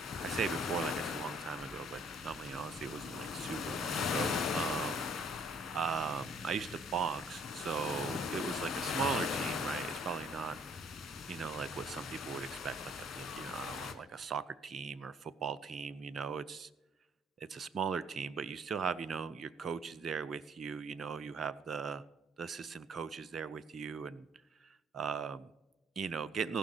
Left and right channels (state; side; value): normal; both; correlation 0.62